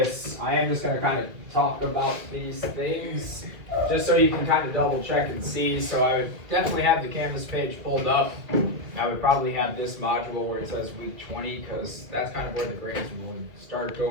I am just going to kind of talk about these things just so you can kind of double check and see. So I would definitely have the Canvas page pulled up. I would probably have this module where it says week 20 because that's kind of where the grades will start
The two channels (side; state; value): left; late; 2.1 ms